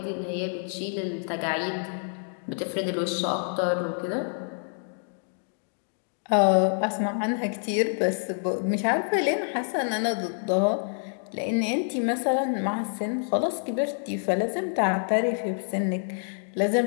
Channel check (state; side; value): silent; right; digital silence